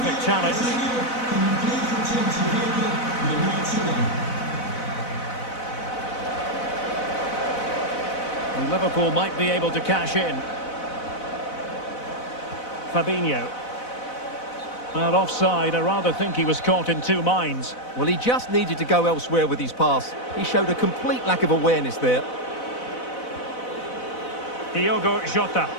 challenge. And Liverpool might be able to cash in. Fabinho. Well, offside. I rather think he was caught in two minds. Well, he just needed to go elsewhere with his pass. He showed a complete lack of awareness there. Diogo Jota.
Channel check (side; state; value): right; late; 4.0 ms